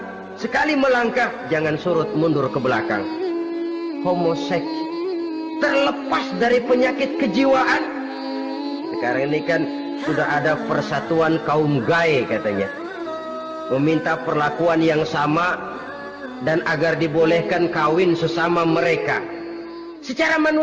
Sekali melangkah, jangan surut mundur ke belakang. Homoseks, terlepas dari penyakit kejiwaan. Sekarang ini kan sudah ada persatuan kaum gay katanya, meminta perlakuan yang sama dan agar dibolehkan kawin sesama mereka. Secara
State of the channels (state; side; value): identical; both; correlation 1.00